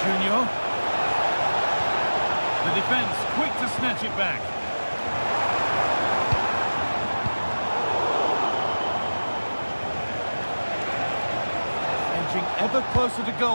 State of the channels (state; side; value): inverted; both; correlation -1.00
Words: Junior. The defence quick to snatch it back. Edging ever closer to